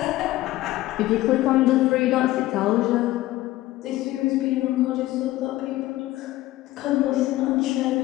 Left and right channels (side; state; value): right; quieter; 16.6 dB